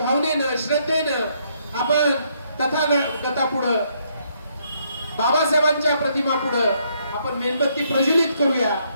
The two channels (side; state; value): both; inverted; correlation -0.72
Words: श्रद्धेनं आपण तथागतापुढे बाबासाहेबांच्या प्रतिमा पुढे आपण मेणबत्ती प्रज्वलित करूया,